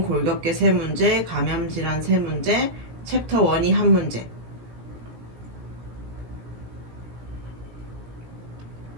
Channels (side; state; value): left; late; 17 ms